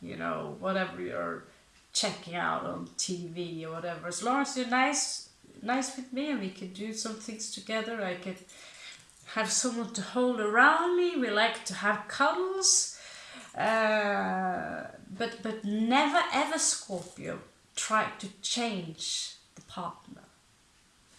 you know, whatever you're checking out on TV or whatever. As long as you're nice with me and we can do some things together, I can have someone to hold around me. We like to have cuddles. But never ever, Scorpio, try to change the partner.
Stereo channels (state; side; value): identical; both; correlation 1.00